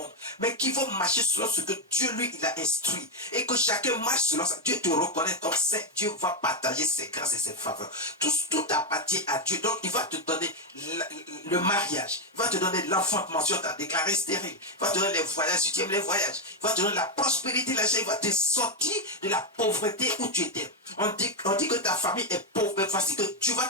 mais qui vont marcher selon ce que Dieu lui il a instruit. Et que chacun marche selon ça. Dieu te reconnaît comme saint. Dieu va partager ses grâces et ses faveurs. Tout appartient à Dieu. Donc il va te donner le mariage. Il va te donner l'enfantement. Tu as déclaré stérile. Il va te donner les voyages. Si tu aimes les voyages. Il va te donner la prospérité. Il va te sortir de la pauvreté où tu étais. On dit que ta famille est pauvre, mais voici que tu vas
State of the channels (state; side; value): normal; both; correlation 0.04